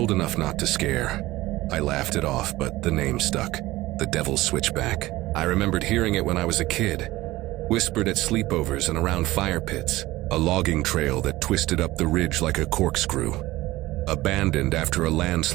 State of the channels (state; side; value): quieter; left; 18.0 dB